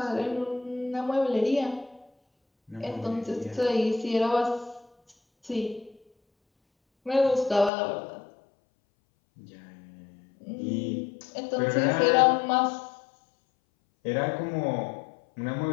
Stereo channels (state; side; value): drops out; right; at 7.7 s